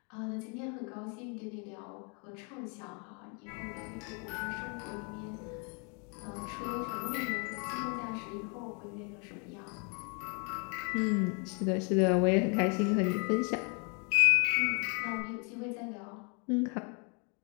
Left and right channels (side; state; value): right; quieter; 35.6 dB